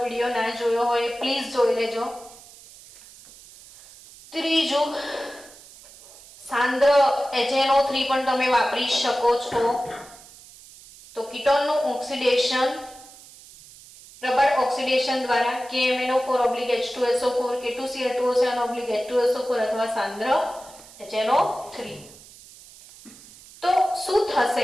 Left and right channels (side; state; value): right; noise; hiss, 21 dB below the sound